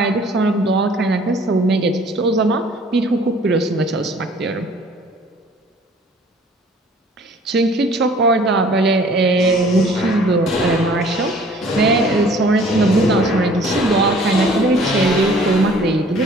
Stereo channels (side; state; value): both; normal; correlation 0.53